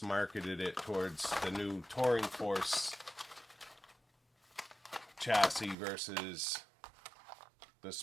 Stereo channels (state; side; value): drops out; left; at 5.8 s